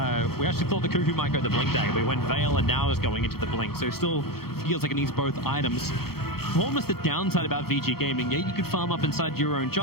We actually thought the Kuku might go the Blink Dagger, but he went Veil and now is going into the Blink, so it still feels like it needs both items. Almost the downside about Vici Gaming, yeah, you could farm up inside your own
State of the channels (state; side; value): late; right; 0.94 ms